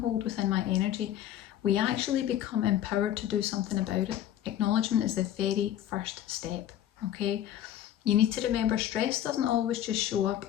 within my energy, we actually become empowered to do something about it. Acknowledgement is the very first step, okay? You need to remember, stress doesn't always just show up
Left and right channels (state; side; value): quieter; right; 11.4 dB